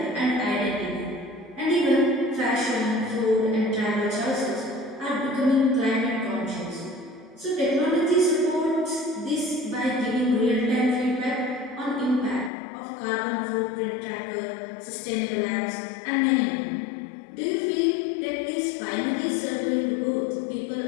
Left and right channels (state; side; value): drops out; right; at 12.5 s